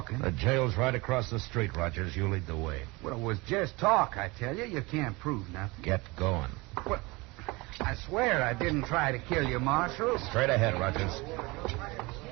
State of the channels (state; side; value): quieter; left; 24.2 dB